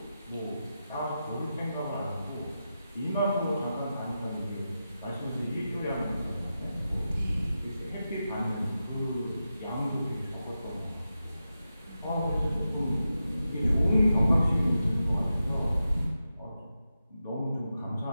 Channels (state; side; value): inverted; both; correlation -0.90